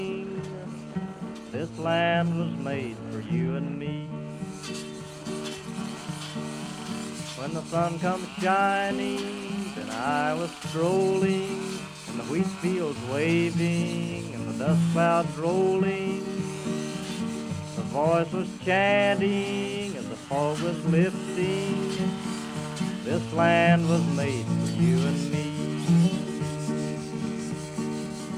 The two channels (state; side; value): identical; both; correlation 1.00